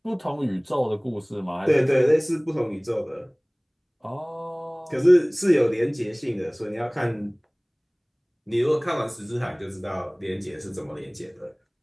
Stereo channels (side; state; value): both; identical; correlation 1.00